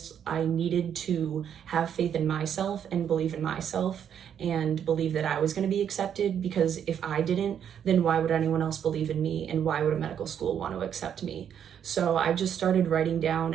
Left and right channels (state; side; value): quieter; left; 8.8 dB